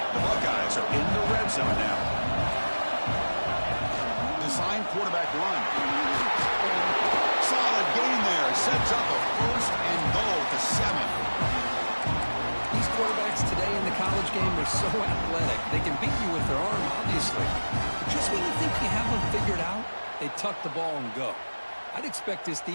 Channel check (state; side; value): inverted; both; correlation -1.00